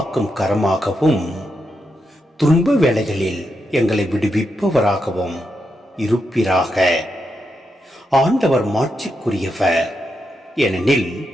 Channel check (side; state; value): both; normal; correlation 0.84